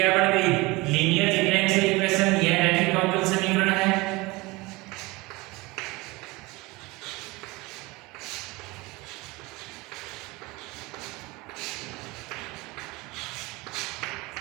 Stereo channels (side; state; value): left; quieter; 23.1 dB